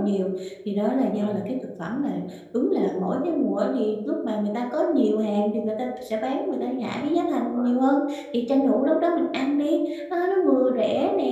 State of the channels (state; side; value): identical; both; correlation 1.00